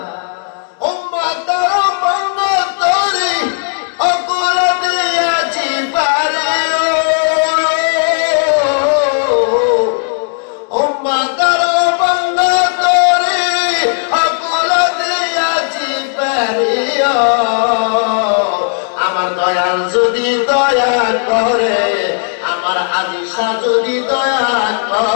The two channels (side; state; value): right; silent; digital silence